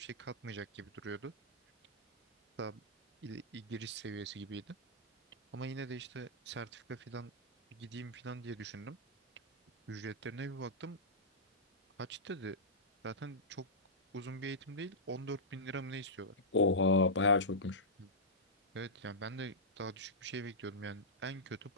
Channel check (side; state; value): both; normal; correlation -0.12